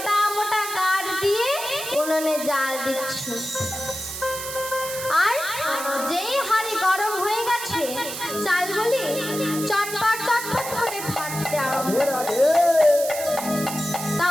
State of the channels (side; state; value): right; noise; hiss, 7 dB below the sound